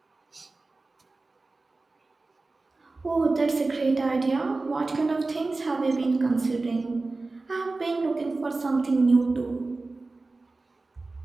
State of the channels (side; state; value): left; quieter; 3.5 dB